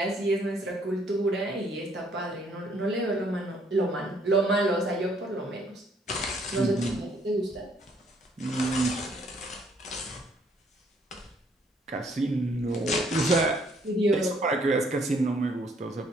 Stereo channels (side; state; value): both; normal; correlation 0.65